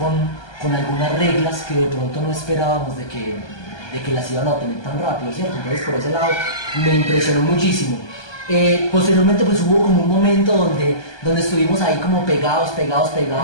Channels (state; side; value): late; right; 1.2 ms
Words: algunas reglas que de pronto no esperábamos de que las iban a obtener tan rápido, ¿cierto? Entonces por ese lado me impresionó muchísimo. Posteriormente pues hubo como un momento donde estuvimos ahí como pegados,